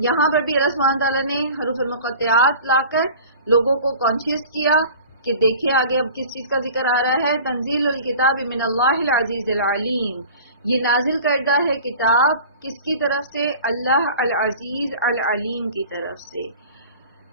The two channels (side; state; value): both; inverted; correlation -0.42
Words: یہاں پر بھی اللہ سبحانہ تعالیٰ نے حروف المقطعات لا کر لوگوں کو کانشیس کیا کہ دیکھیں آگے اب کس چیز کا ذکر آ رہا ہے. تنزیل الکتاب من اللہ العزیز العلیم. یہ نازل کردہ ہے کتاب کس کی طرف سے؟ اللہ العزیز العلیم کی طرف سے.